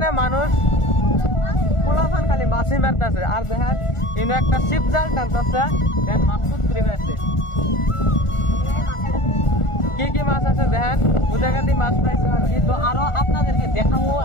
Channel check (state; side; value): late; right; 1.4 ms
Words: মানুষ পোলাফান খালি মাছি মারতেছে। আর দেখেন ইনো একটা শিপ জাল টানতেছে, দেন মাছ তুলে আছে। কি কি মাছ আছে দেখেন, বুঝাগাতি মাছ পাইছে আর কি। তো আরো আপনাদেরকে দেখাবো,